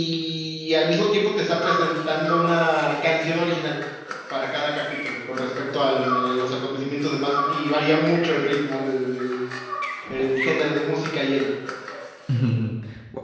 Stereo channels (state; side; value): identical; both; correlation 1.00